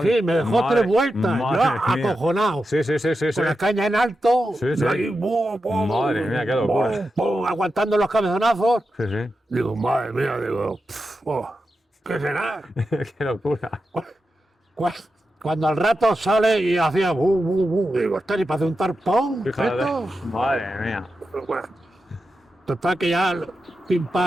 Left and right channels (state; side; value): normal; both; correlation 0.89